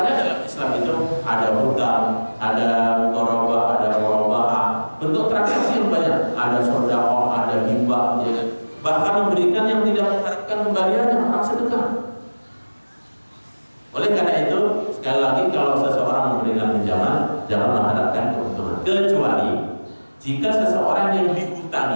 dalam Islam itu ada hutang, ada muqarabah, ada murabahah. Bentuk transaksi yang banyak. Ada sedekah, ada hibah, ya. Bahkan memberikan yang tidak mengharapkan kembaliannya, orang sedekah. Oleh karena itu, sekali lagi kalau seseorang memberikan pinjaman, jangan mengharapkan keuntungan. Kecuali jika seseorang yang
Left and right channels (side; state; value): both; inverted; correlation -1.00